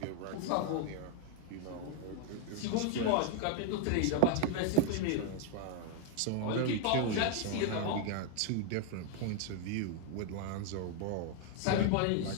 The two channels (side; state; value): both; different; correlation 0.00